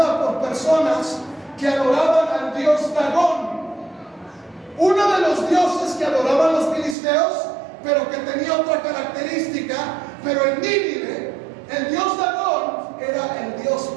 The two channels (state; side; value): drops out; left; at 7.0 s